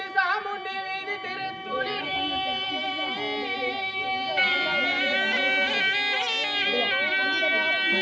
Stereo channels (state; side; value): identical; both; correlation 1.00